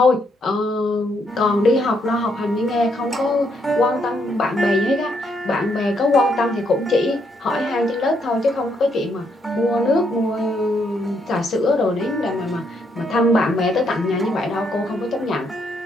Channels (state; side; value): normal; both; correlation 0.74